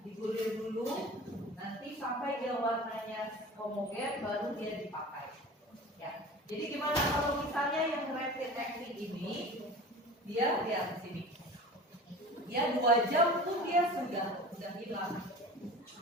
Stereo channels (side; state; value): both; normal; correlation 0.37